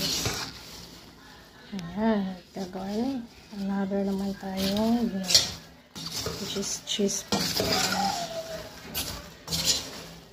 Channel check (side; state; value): both; identical; correlation 1.00